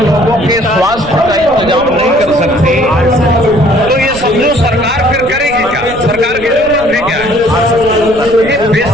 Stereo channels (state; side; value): noise; right; rumble, 14 dB below the sound